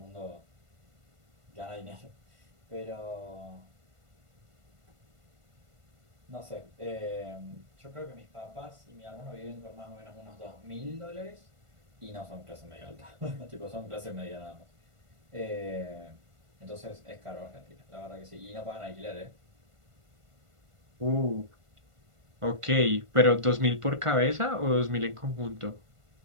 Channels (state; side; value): late; left; 1.5 ms